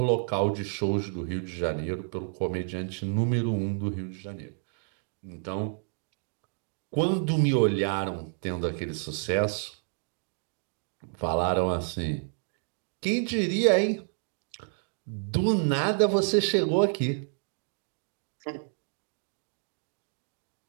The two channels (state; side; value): silent; left; 58 dB below the other